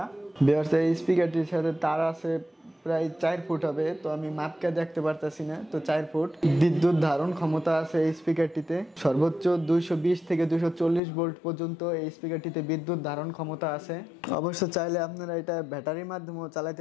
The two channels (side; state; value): right; drops out; at 11.0 s